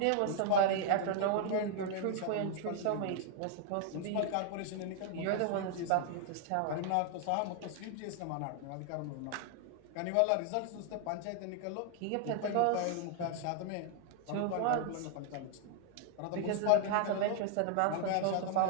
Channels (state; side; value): different; both; correlation 0.00